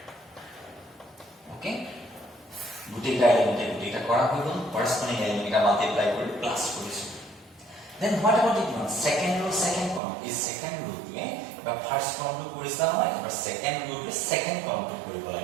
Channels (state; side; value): drops out; left; at 10.0 s